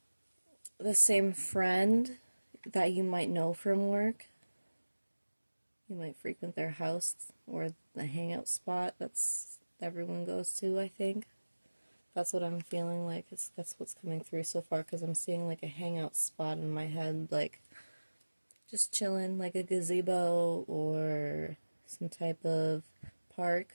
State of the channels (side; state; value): both; inverted; correlation -1.00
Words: the same friend that you might know from work. You might frequent their house or the hangout spot that's everyone goes to, I think. That's what I'm feeling like. That's what's coming through so far, because I'm seeing like a hangout spot in my head, like just chilling, like a gazebo or some type of